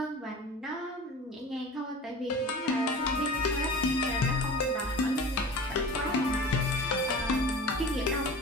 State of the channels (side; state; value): both; normal; correlation 0.37